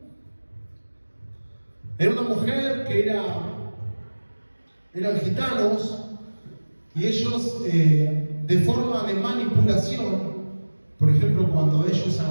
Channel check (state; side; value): inverted; both; correlation -1.00